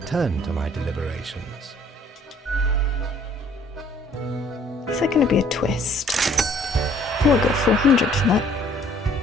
to my deliberations. Is there going to be a twist? Oh, I got 400 for that.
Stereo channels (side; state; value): both; normal; correlation 0.59